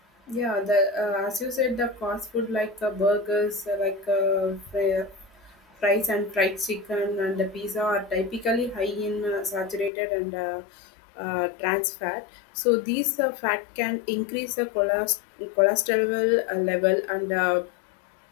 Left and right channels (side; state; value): right; drops out; at 9.9 s